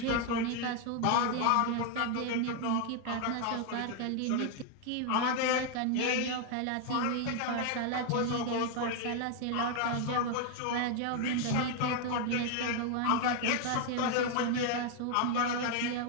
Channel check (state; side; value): different; both; correlation 0.01